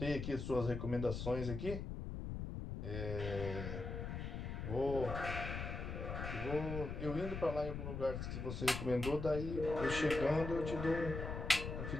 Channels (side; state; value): left; noise; rumble, 5 dB below the sound